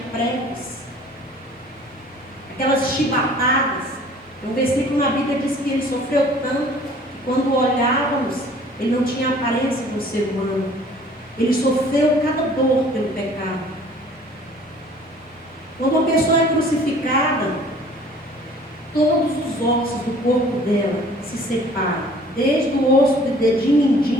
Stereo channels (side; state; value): both; normal; correlation 0.52